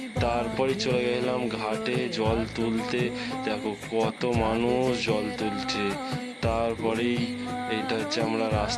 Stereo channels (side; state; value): both; identical; correlation 1.00